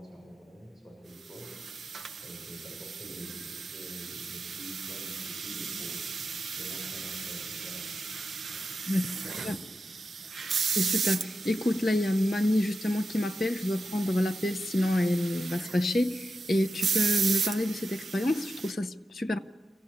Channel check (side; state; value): both; normal; correlation 0.90